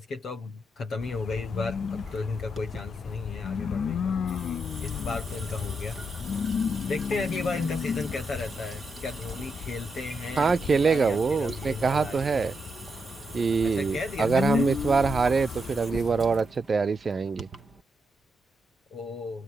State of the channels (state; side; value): normal; both; correlation 0.83